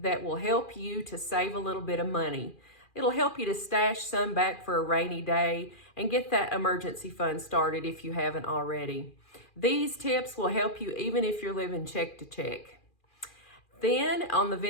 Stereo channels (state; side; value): late; right; 2.4 ms